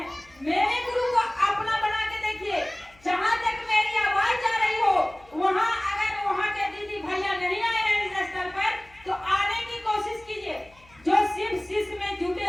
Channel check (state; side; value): noise; left; hum, 28 dB below the sound